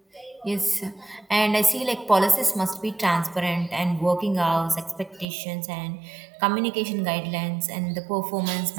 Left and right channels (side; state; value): left; drops out; at 5.2 s